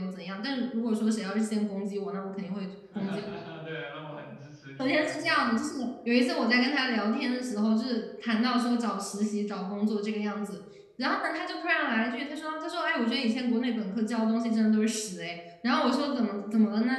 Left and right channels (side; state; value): both; identical; correlation 1.00